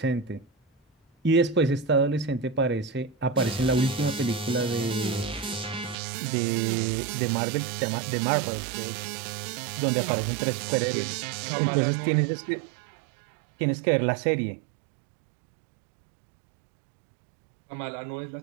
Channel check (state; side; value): drops out; left; at 6.0 s